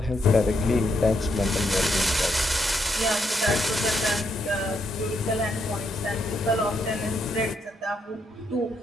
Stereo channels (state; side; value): normal; both; correlation 0.78